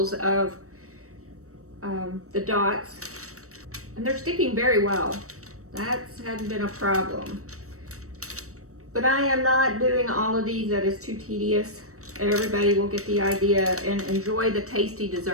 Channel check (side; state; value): left; late; 0.65 ms